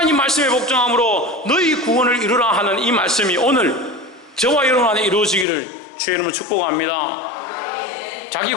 말씀에 복종함으로 너희 구원을 이루라 하는 이 말씀이 오늘 저와 여러분 안에 이루어지기를 주의 이름으로 축복합니다. 자기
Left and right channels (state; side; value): drops out; right; at 5.5 s